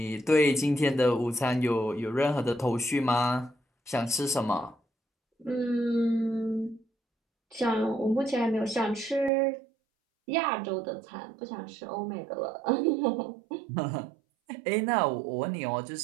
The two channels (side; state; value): left; drops out; at 9.3 s